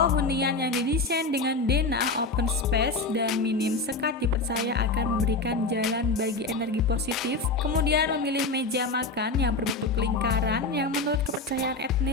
hunian yang didesain dengan denah open space dan minim sekat dipercaya akan memberikan jalan bagi energi positif. Kemudian memilih meja makan yang berbentuk lingkaran yang menurut kepercayaan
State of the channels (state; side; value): quieter; right; 3.5 dB